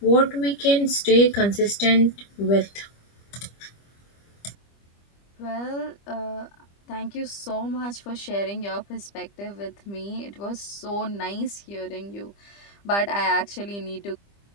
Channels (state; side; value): late; right; 25 ms